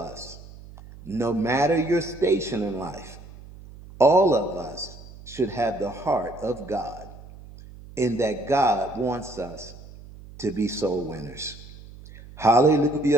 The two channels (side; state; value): right; noise; hum, 18 dB below the sound